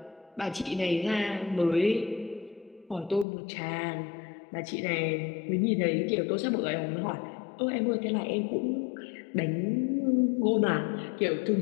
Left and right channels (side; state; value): right; drops out; at 3.2 s